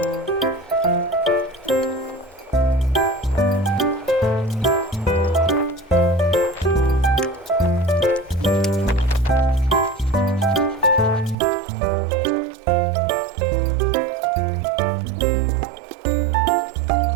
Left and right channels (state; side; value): drops out; left; at 11.4 s